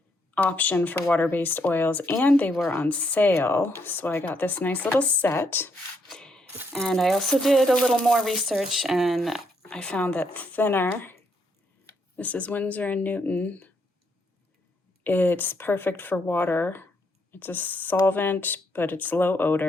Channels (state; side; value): normal; both; correlation 0.75